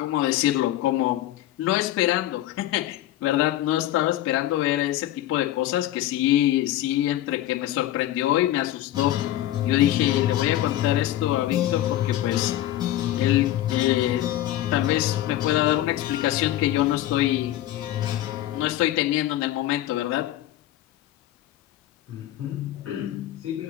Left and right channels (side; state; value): right; quieter; 13.7 dB